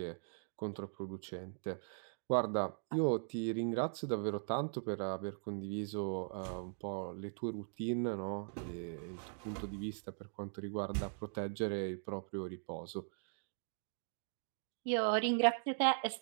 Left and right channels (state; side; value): silent; left; digital silence